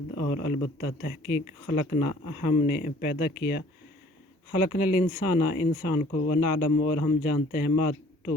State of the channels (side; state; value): both; normal; correlation 0.54